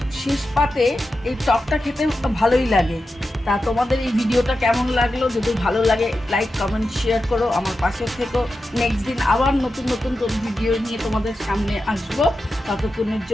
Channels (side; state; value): both; normal; correlation 0.91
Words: শেষ পাতে এই টকটা খেতে ভালোই লাগে। তা তোমাদের এই ভিডিওটা কেমন লাগলো? যদি ভালো লাগে লাইক কমেন্ট শেয়ার করো, আমার পাশে থেকো। নেক্সট দিন আবার নতুন নতুন ভিডিও নিয়ে তোমাদের সামনে আসবো। ততক্ষণের